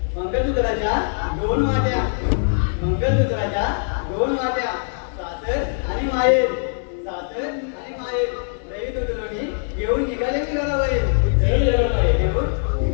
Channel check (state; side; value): silent; right; 64 dB below the other